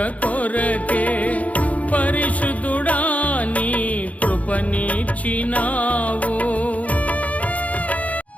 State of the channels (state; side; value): late; right; 0.069 ms